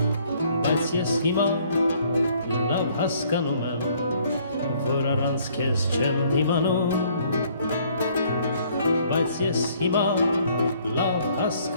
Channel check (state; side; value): inverted; both; correlation -0.62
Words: բայց ես հիմա լավ հասկանում եմ, որ առանց քեզ չեմ դիմանում, բայց ես հիմա լավ